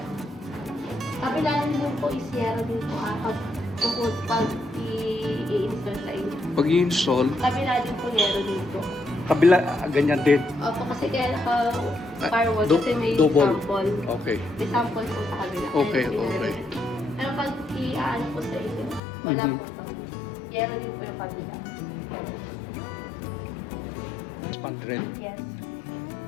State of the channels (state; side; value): drops out; right; at 19.0 s